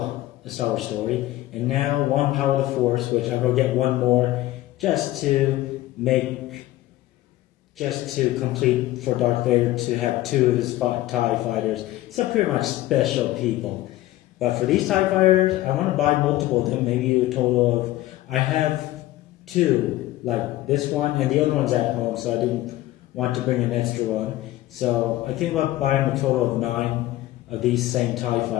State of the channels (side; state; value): right; quieter; 16.2 dB